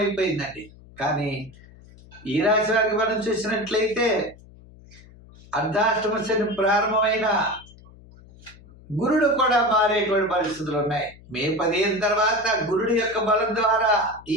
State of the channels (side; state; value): left; noise; hum, 23 dB below the sound